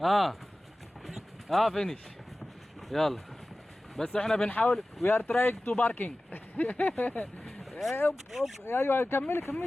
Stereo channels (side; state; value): both; normal; correlation 0.97